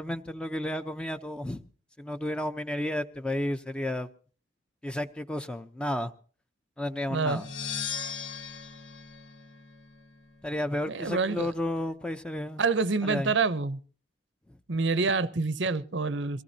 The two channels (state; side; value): normal; both; correlation 0.42